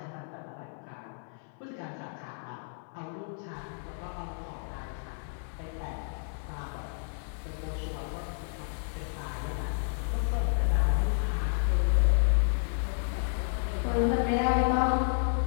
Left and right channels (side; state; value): right; silent; 57 dB below the other